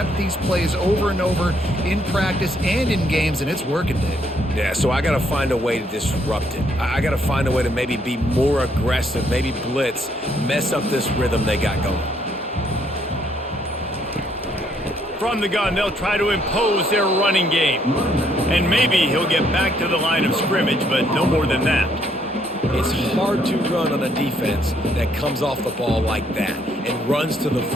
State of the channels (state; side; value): normal; both; correlation 0.70